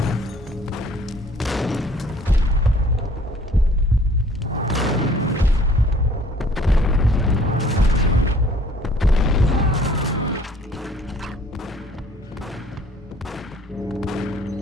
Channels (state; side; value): normal; both; correlation 0.55